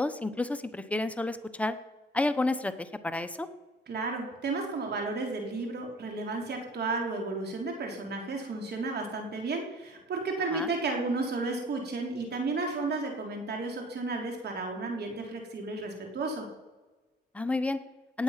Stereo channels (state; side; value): normal; both; correlation 0.51